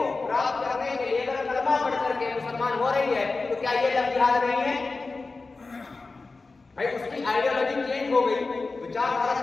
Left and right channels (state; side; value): quieter; right; 3.8 dB